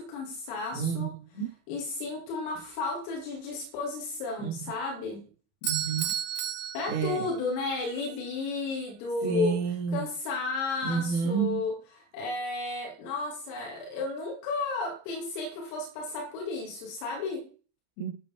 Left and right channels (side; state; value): right; late; 30 ms